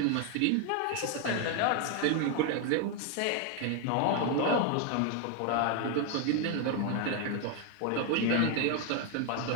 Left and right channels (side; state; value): both; different; correlation 0.01